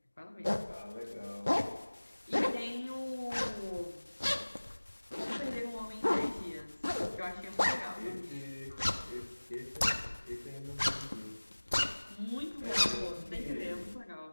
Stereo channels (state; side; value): inverted; both; correlation -1.00